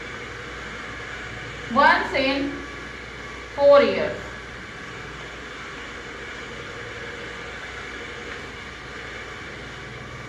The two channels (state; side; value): identical; both; correlation 1.00